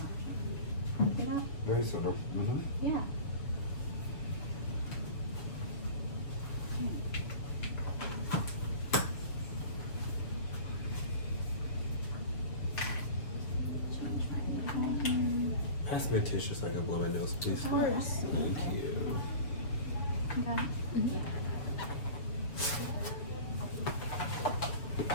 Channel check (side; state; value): right; late; 7.0 ms